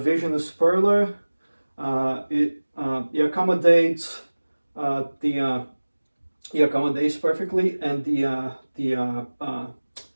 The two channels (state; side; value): inverted; both; correlation -1.00